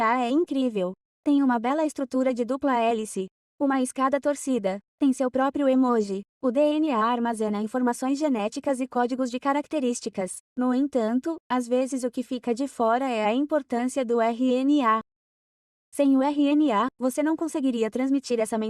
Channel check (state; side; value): identical; both; correlation 1.00